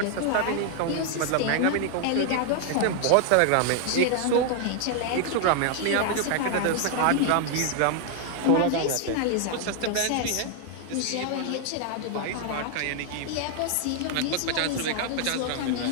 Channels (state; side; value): different; both; correlation 0.00